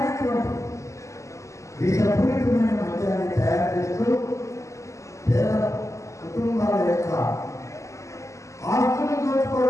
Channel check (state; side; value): late; right; 0.15 ms